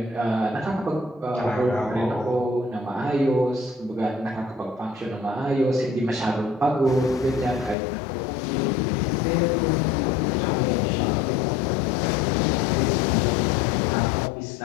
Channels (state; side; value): drops out; right; at 7.8 s